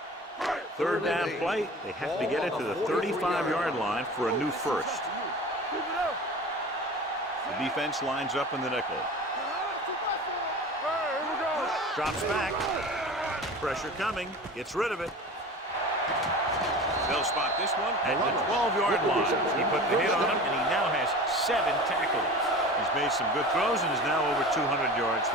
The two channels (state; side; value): normal; both; correlation 0.36